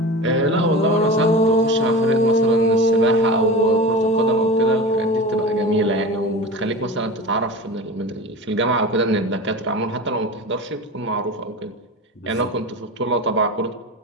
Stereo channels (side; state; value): both; normal; correlation 0.30